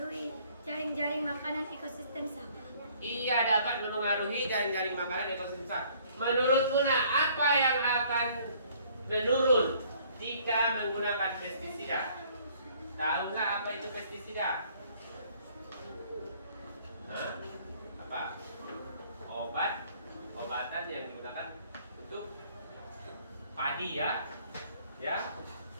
jaring-jaring makanan ekosistem sawah. Iya, dapat memengaruhi jaring-jaring makanan ekosistem sawah. Menurutmu nak, apa yang akan menurun jika menggunakan pestisida? Tahu nggak apa itu pestisida? Hah? Apa? Obatan yang digunakan untuk padi ya. Ya.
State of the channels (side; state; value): both; inverted; correlation -0.59